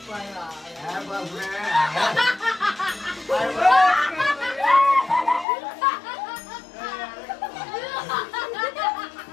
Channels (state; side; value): drops out; right; at 5.5 s